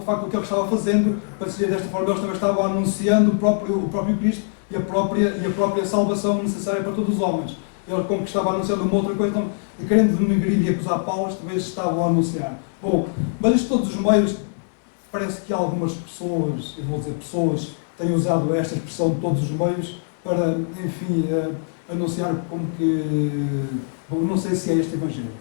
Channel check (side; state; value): right; silent; 64 dB below the other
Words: facto o que ele estava fazendo, para dizer desta forma, eles também estavam anunciando o próprio Cristo e a própria salvação necessária para todos os homens. Ele, como que estava anunciando uma outra coisa, então, querendo denegrir e acusar Paulo, talvez estavam a anunciar. Bom, mas isto todos os meios, parece que algumas pessoas, e vou dizer pessoas, têm usado esta expressão de todos os meios para, enfim, anunciar como que... Bom, não sei se é este Evangelho.